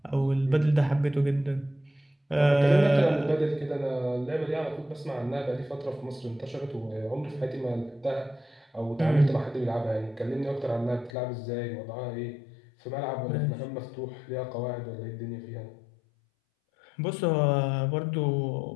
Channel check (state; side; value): drops out; right; at 11.1 s